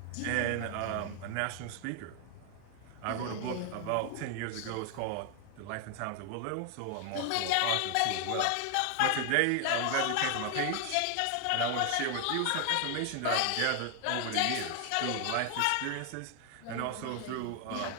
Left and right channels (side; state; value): both; different; correlation 0.00